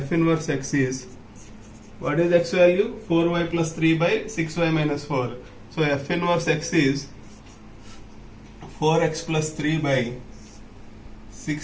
inverse x is, what is x value? 4y plus 3 by 6y minus 4. So f inverse x is 4x plus 3 by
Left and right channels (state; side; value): identical; both; correlation 1.00